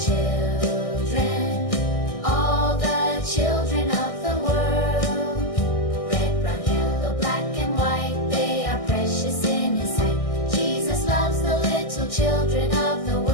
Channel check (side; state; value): right; late; 1.6 ms